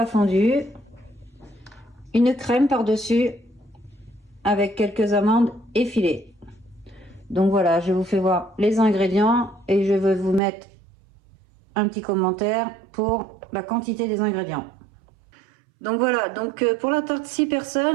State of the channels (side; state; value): left; drops out; at 10.4 s